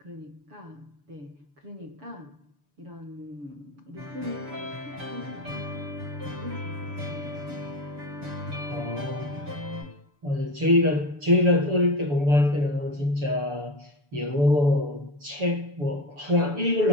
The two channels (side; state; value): left; late; 6.9 ms